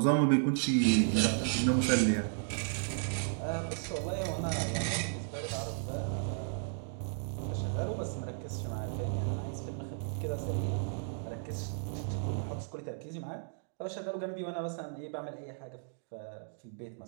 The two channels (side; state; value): left; silent; digital silence